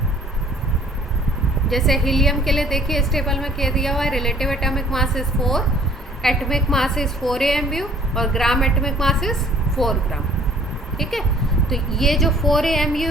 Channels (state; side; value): normal; both; correlation 0.56